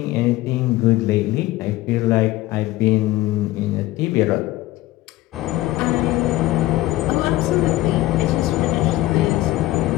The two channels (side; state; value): right; quieter; 17.0 dB